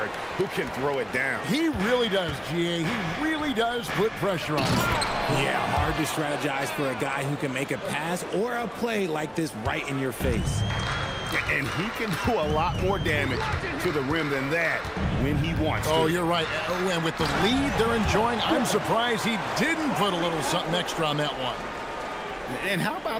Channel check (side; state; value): both; identical; correlation 1.00